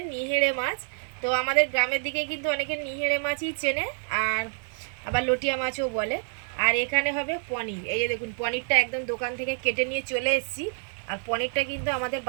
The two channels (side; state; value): left; silent; 60 dB below the other